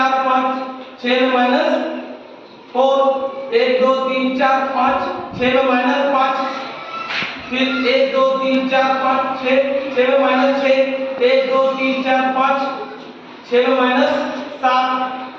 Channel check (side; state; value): both; identical; correlation 1.00